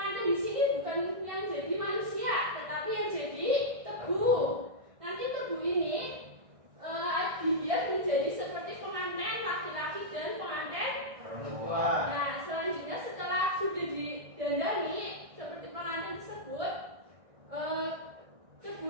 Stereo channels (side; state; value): left; late; 1.6 ms